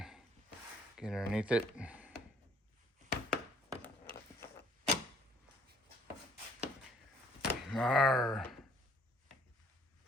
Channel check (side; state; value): both; normal; correlation 0.61